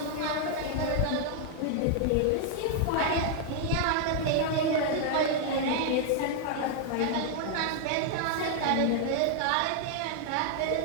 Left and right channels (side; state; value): both; different; correlation 0.00